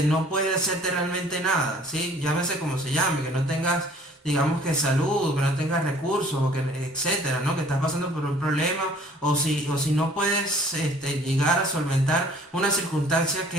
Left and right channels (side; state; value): both; normal; correlation 0.53